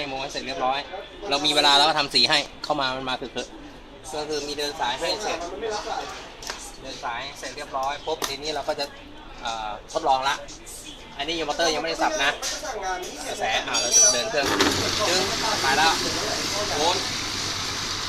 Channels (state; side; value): identical; both; correlation 1.00